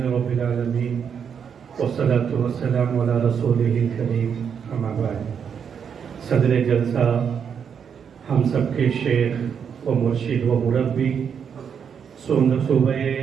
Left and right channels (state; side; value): quieter; left; 7.3 dB